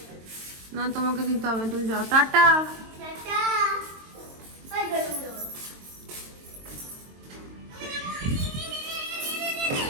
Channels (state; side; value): late; left; 22 ms